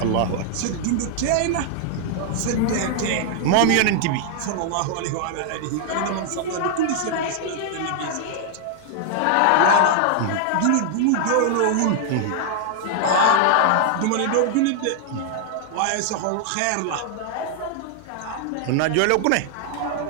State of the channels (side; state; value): both; different; correlation 0.00